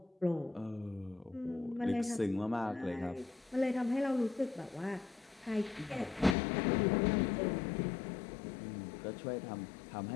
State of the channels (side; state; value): right; drops out; at 6.4 s